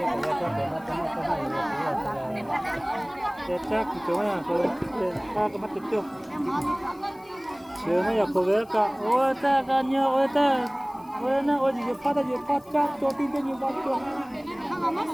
Chắc thì chỗ này có cái mà tiền chơi. Chưa mà có cái ôi ta cái nhau ôi ta ôi nó ôi gì phát ra gì phát chắc cho tin cái nhiều phát cho.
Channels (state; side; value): noise; left; hiss, 29 dB below the sound